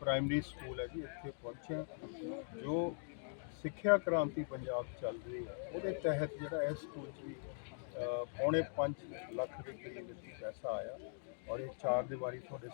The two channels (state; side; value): silent; right; digital silence